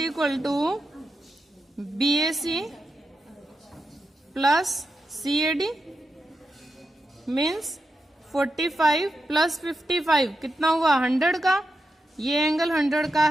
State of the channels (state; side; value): normal; both; correlation 0.87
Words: to BAC plus CAD means 45 plus 55 कितना हुआ, 100 का। ये एंगल 100 का